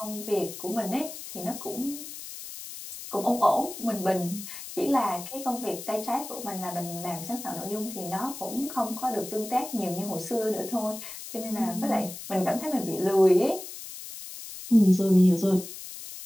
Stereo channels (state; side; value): noise; left; hiss, 11 dB below the sound